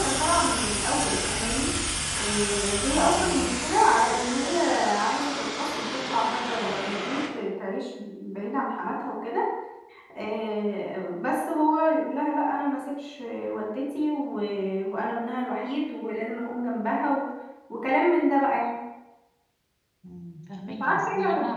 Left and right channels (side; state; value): both; identical; correlation 1.00